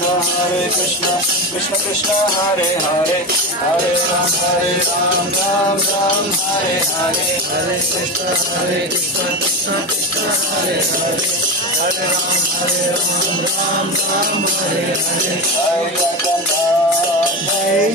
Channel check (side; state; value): both; normal; correlation 0.20